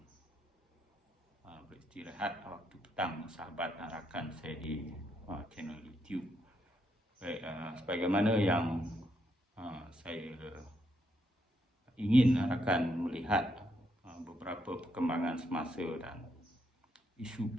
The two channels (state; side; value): normal; both; correlation 0.77